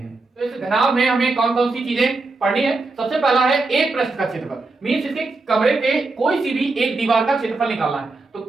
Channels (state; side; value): quieter; left; 3.5 dB